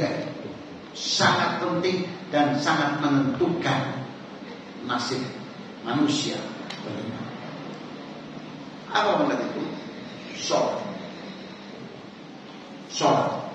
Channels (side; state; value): both; identical; correlation 1.00